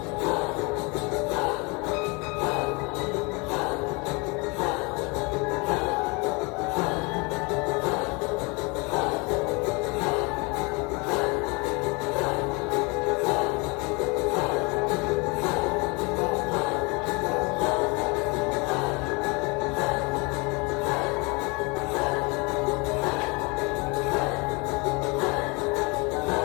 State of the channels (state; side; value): quieter; right; 28.8 dB